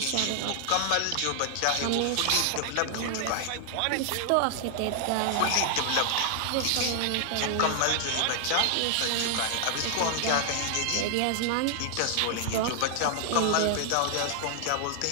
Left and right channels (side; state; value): both; different; correlation 0.00